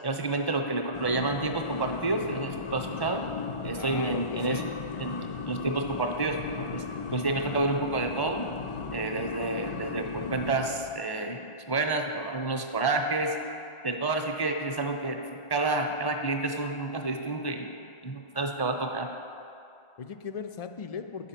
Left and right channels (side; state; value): right; late; 1.1 ms